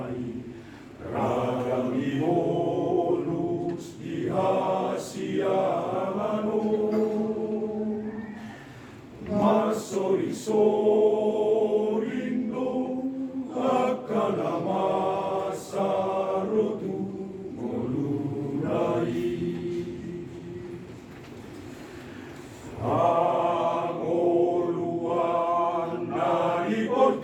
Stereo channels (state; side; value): identical; both; correlation 1.00